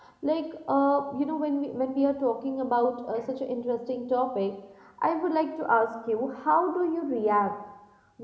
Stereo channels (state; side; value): identical; both; correlation 1.00